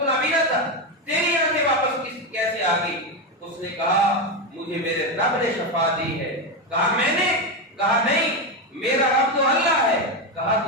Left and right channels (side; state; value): both; normal; correlation 0.11